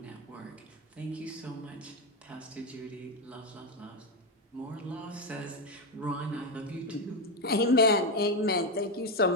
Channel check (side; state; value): both; normal; correlation 0.09